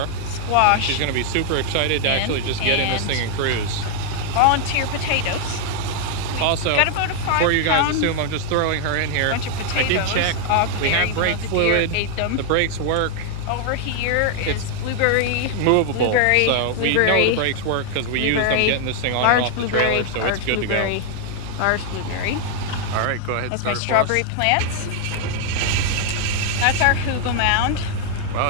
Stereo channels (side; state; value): both; different; correlation 0.00